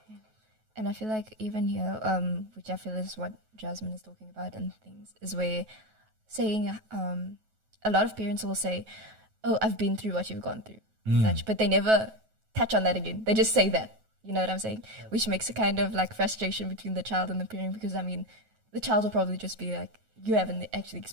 And I feel like even here, which I feel is what Jasmine is talking about and things, is where saying, a lot of parents will say, oh, I've been through what you've gone through, such, but they never touch on that again. They just say that, you know what I'm saying? Which makes a kind of like frustration between the child and the parent, because I mean, the child will probably just be like, you haven't actually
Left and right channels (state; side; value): late; left; 9.2 ms